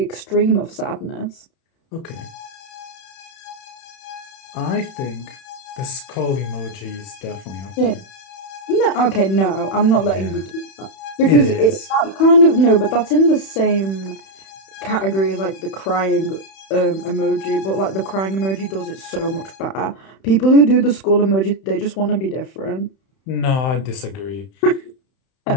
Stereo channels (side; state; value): right; late; 31 ms